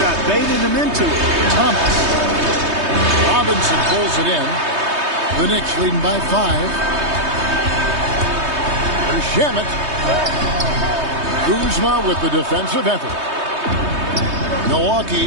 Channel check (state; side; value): late; left; 3.2 ms